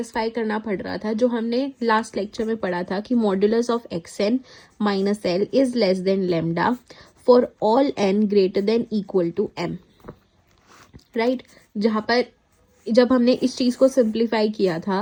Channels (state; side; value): identical; both; correlation 1.00